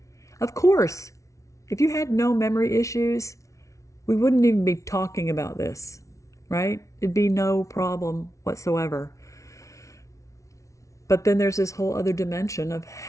Of course, if you had no memory issues, we wouldn't even be talking about this, right? It'd be no problem whatsoever. But then there's this whole other dimension of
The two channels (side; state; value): right; late; 0.15 ms